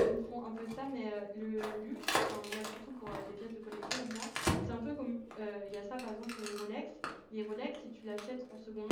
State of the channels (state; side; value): identical; both; correlation 1.00